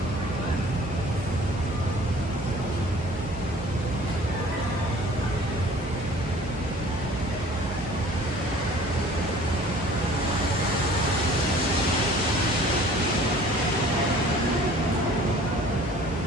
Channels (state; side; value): normal; both; correlation 0.49